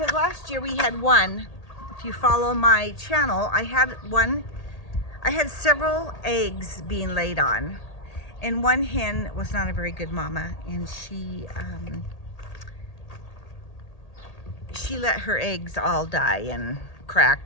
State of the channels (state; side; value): late; right; 1.8 ms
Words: last year we had one. If you follow my channel, I had several eggs being laid on. And one hen was not a very good mama, and she let her eggs all die and